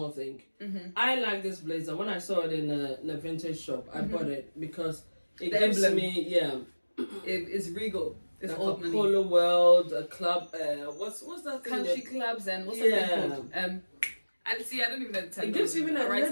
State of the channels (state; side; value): inverted; both; correlation -1.00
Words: thing. I like this blazer. When I saw it in a vintage shop, I bought it because it The gives emblem. me It's regal. It's like old a money. polo world, a club. What's that thing? Country clubs and what's that thing called? And see, I don't even know the term. It gives even a